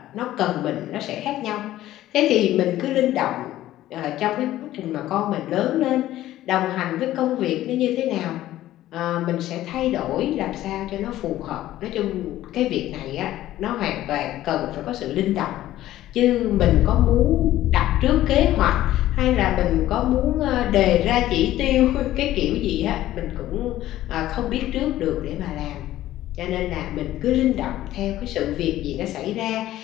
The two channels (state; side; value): quieter; right; 14.2 dB